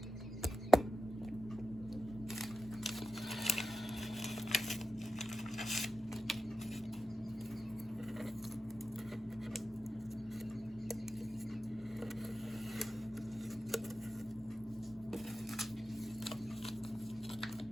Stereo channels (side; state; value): both; normal; correlation 0.91